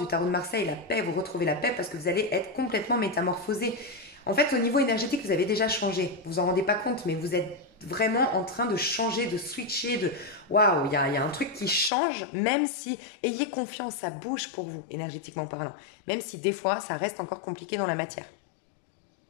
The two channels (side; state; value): right; drops out; at 11.9 s